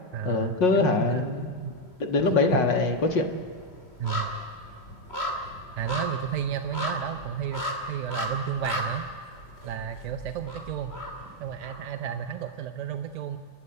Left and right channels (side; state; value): right; late; 3.1 ms